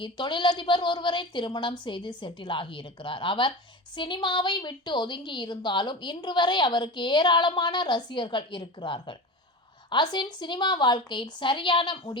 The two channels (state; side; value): normal; both; correlation 0.28